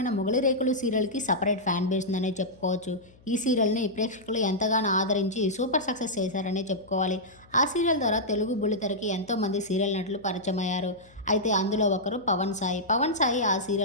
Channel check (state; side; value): noise; left; hum, 28 dB below the sound